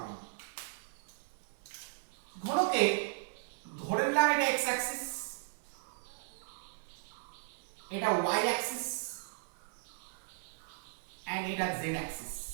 ঘনকে ধরে নিলাম এটা x অ্যাক্সিস, এটা y অ্যাক্সিস এন্ড এটা z অ্যাক্সিস।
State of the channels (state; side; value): silent; left; 53 dB below the other